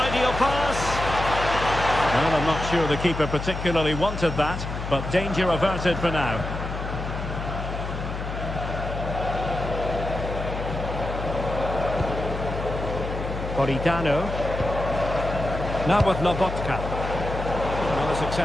pass. Well, I'm not sure the keeper particularly wanted that, but danger averted for now. Politano. Now with Lobotka. Another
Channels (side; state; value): left; noise; hum, 6 dB below the sound